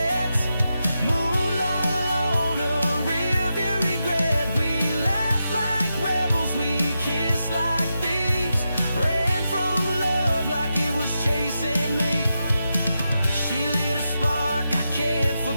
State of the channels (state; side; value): inverted; both; correlation -0.88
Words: moonlight on a rearview regret. We laughed like rebels, we kissed like thieves, ran from love like it was chasing me. She lit a spark I can't